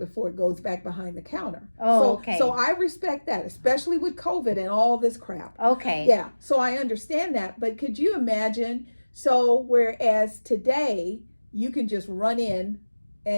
it goes back behind the counter. Okay. So I respect that, especially with COVID and all this crap. Okay. Yeah, so I understand that, but could you imagine, so whereas today you can just run in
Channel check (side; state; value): both; inverted; correlation -1.00